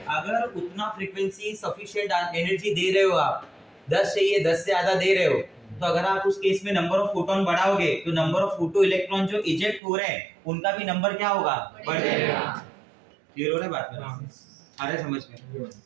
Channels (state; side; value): drops out; left; at 9.8 s